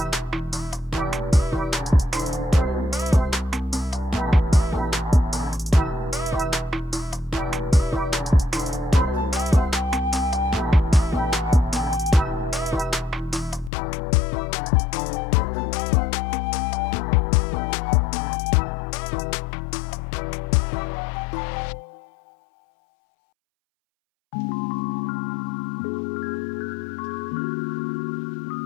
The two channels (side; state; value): right; drops out; at 13.7 s